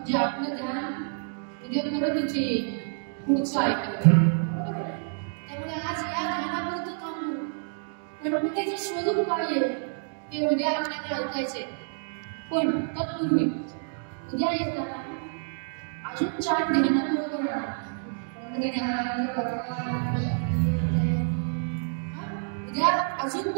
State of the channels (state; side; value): silent; left; digital silence